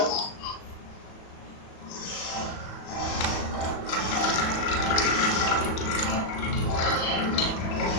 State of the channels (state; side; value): late; right; 37 ms